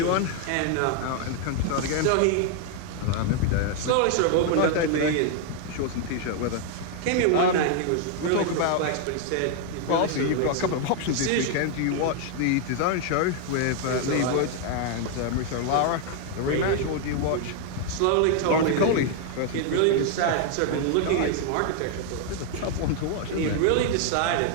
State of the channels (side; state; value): both; different; correlation 0.00